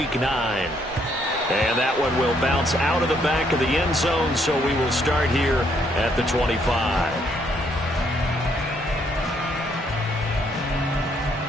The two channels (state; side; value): normal; both; correlation 0.71